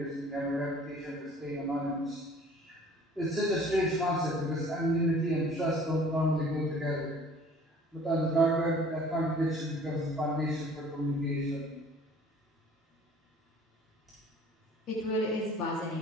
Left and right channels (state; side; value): normal; both; correlation 0.51